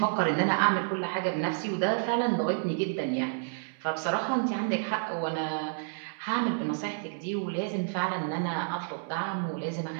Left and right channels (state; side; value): silent; left; digital silence